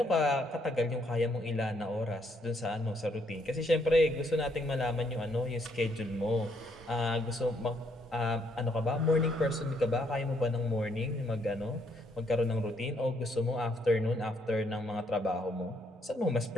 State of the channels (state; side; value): normal; both; correlation 0.71